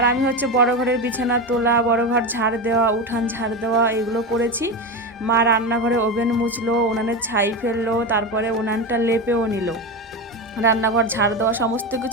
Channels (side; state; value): both; normal; correlation 0.18